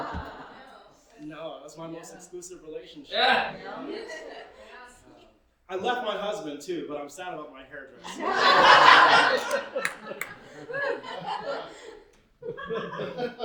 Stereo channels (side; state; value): both; identical; correlation 1.00